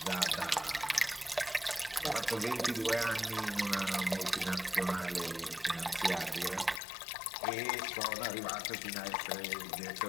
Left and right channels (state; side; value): drops out; right; at 6.8 s